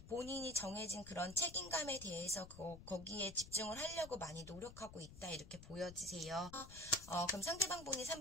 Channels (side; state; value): left; noise; rumble, 15 dB below the sound